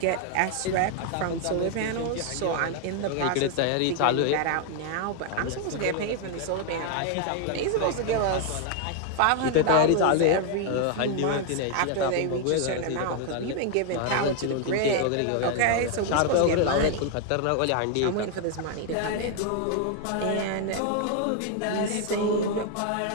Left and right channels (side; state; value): both; different; correlation 0.00